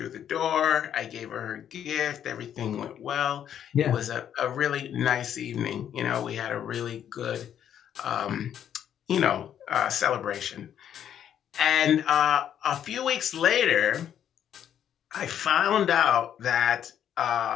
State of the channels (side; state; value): right; quieter; 9.7 dB